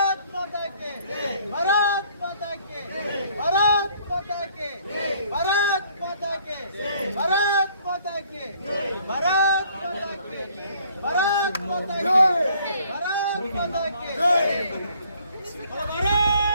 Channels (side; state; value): both; inverted; correlation -0.61